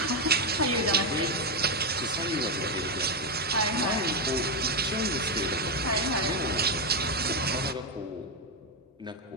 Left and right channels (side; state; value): both; normal; correlation 0.05